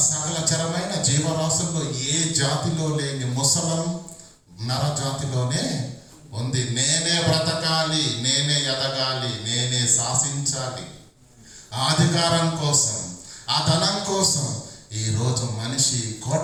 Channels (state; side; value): identical; both; correlation 1.00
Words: సకల చరమైన జీవరాశుల్లో ఏ జాతిలో లేని ముసలం నర జాతిలోనే ఉంది. నేనే బ్రతకాలి, నేనే ఎదగాలి, నేనే శాసించాలి. ఆ అధికారం కోసం, ఆ ధనం కోసం ఈరోజు మనిషి